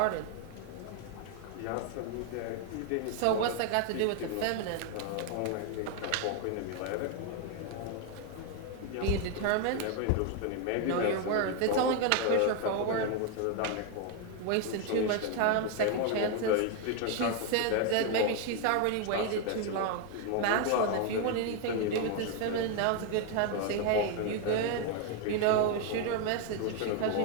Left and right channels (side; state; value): both; different; correlation 0.01